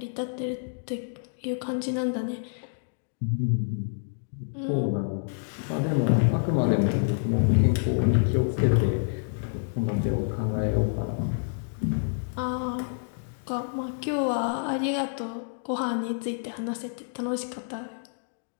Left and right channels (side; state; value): right; silent; digital silence